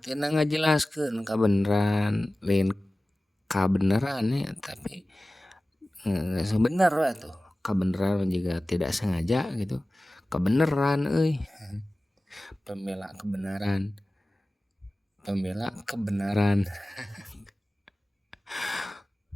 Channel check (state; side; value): normal; both; correlation 0.97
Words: tina ngajelaskeun kabeneran lain kabeneran ya tapi sebenar lah tuh kebenaran juga tidak sengaja gitu kebenaran pembela kebenaran kebenaran